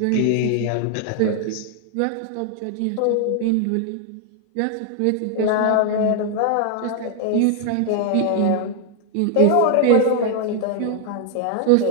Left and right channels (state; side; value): different; both; correlation 0.00